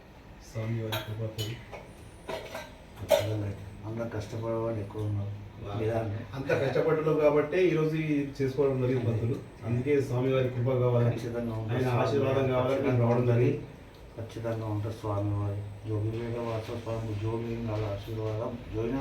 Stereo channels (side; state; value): both; identical; correlation 1.00